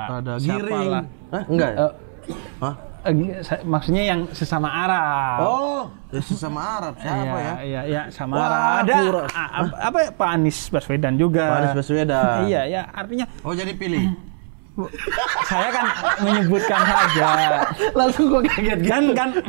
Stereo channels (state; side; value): silent; left; 65 dB below the other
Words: Giring. Enggak. Maksudnya yang sesama Arab. Oh, sesama Arab siapa ya? Iya, Samara. Ada apa ya, Pak Anies Baswedan juga. Pak Anies Baswedan. Iya, ya, artinya jadi pilih. Saya kan menyebutkan saja. Langsung gue kaget kan.